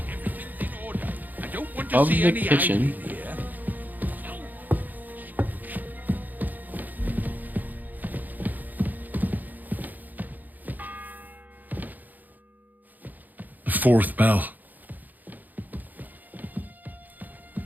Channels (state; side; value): late; left; 0.084 ms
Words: I don't want to Of see the any kitchen. Fourth bell.